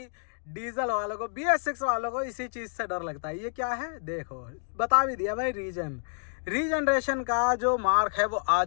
डीजल वालों को, BS6 वालों को इसी चीज से डर लगता है। ये क्या है देखो, बता भी दिया भाई। रीजनरेशन का जो मार्क है वो आ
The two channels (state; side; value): silent; right; digital silence